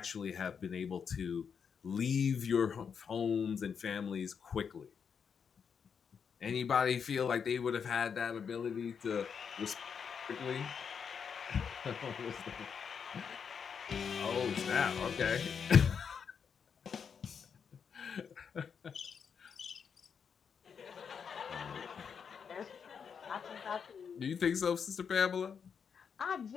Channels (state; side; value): quieter; right; 6.7 dB